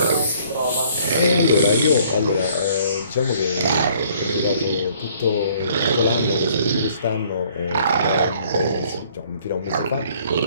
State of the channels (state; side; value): inverted; both; correlation -0.60